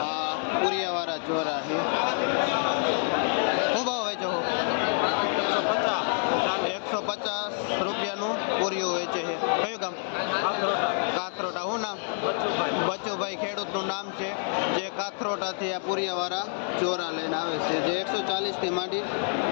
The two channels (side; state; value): right; silent; 56 dB below the other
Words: આ પુરિયાવાળા ચોરા છે, શું ભાવ વેચો? 150 રૂપિયાનું પૂરિયું વેચે છે। કયું ગામ? કાથરોટા। શું નામ? બચુભાઈ ખેડૂતનું નામ છે જે કાથરોટાથી આ પુરિયાવાળા ચોરા લઈને આવે છે, જે 140 થી માંડી